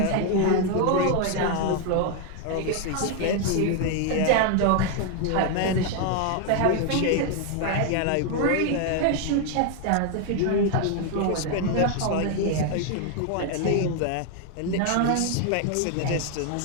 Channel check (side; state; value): both; different; correlation 0.01